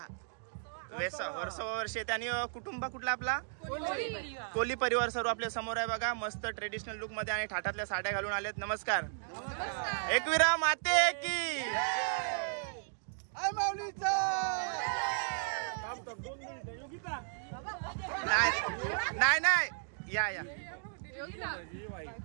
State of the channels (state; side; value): silent; left; digital silence